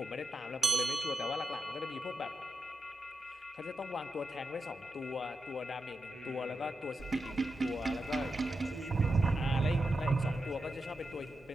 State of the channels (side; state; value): both; normal; correlation 0.88